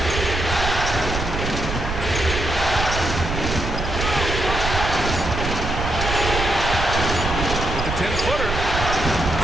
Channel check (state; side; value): noise; right; rumble, 4 dB below the sound